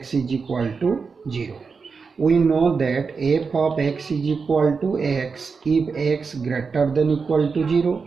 is equal to 0. We know that f of x is equal to x if x greater than equal to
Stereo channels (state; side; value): quieter; left; 5.1 dB